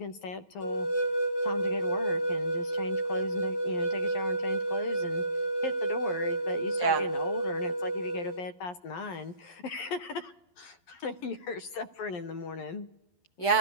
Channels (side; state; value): right; late; 11 ms